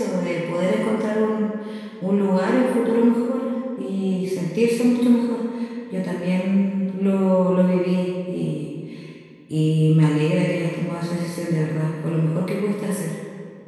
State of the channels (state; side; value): identical; both; correlation 1.00